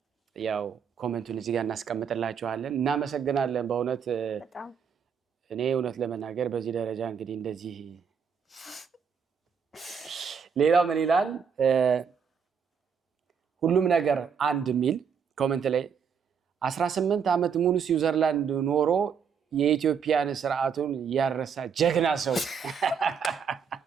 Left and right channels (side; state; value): left; quieter; 6.8 dB